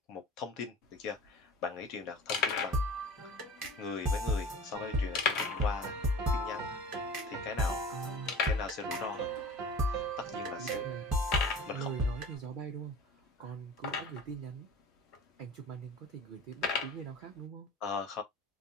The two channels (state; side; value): normal; both; correlation 0.38